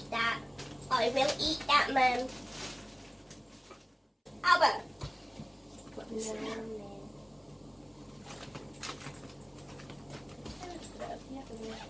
that. I will eat that, Mum. Albert!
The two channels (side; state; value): both; identical; correlation 1.00